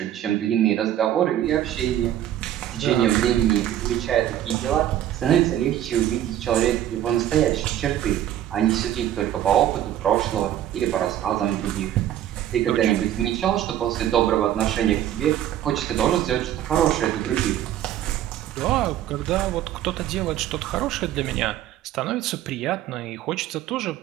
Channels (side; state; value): left; quieter; 11.8 dB